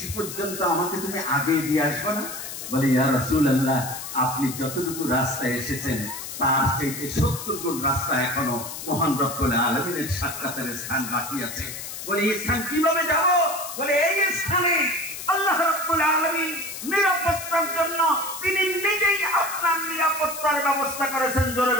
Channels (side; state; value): left; noise; hiss, 9 dB below the sound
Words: পর্যন্ত আমাকে তুমি আগে দিয়ে আসবে না? বলে, ইয়া রাসূলুল্লাহ, আপনি যতটুকু রাস্তায় এসেছেন তার চাইতে 70 গুণ রাস্তা এখনো মহান রব্বুল আলামিনের সাক্ষাতের স্থান বাকি আছে। বলে, এই স্থান কিভাবে যাব? বলে, এই স্থানে আল্লাহ রাব্বুল আলামিন নিরাপত্তার জন্য তিনি নিজেই আপনার নিরাপত্তার ব্যবস্থা করেছেন। জোরে